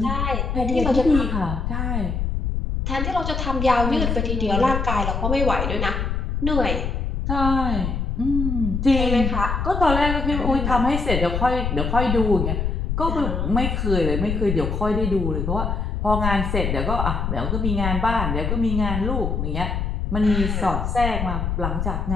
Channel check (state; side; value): noise; left; rumble, 1 dB below the sound